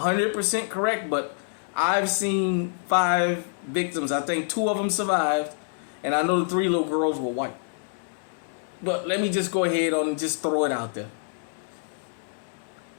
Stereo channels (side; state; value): right; silent; digital silence